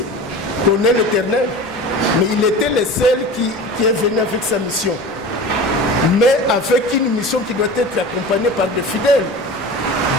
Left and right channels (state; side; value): normal; both; correlation 0.34